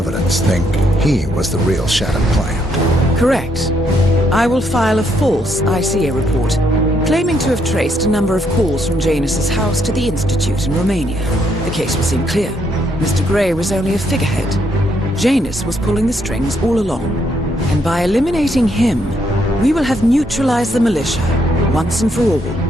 think he was the real Shattered Plant. Correct. I will file a false ICA report, claiming to have traced a number of calls from Janus's house to the Institute in Romania. The case will seem clear. Mr. Gray was only a figurehead. Janus was pulling the strings all along. And by eliminating him, we will have neutralized the militia, once and for all.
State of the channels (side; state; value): both; normal; correlation 0.74